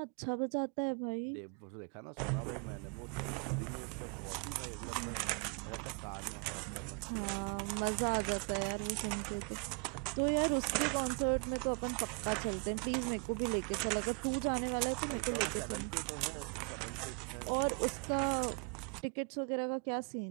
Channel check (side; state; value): left; quieter; 38.1 dB